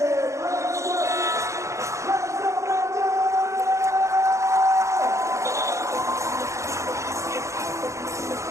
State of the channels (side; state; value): left; late; 0.14 ms